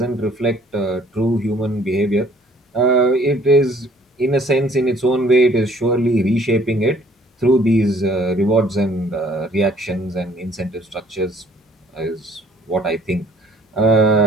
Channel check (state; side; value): normal; both; correlation 0.58